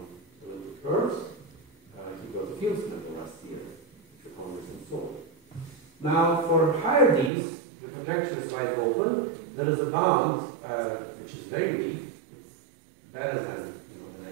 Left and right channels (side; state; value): left; drops out; at 7.3 s